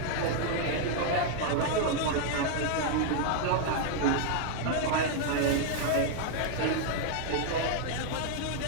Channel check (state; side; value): different; both; correlation 0.00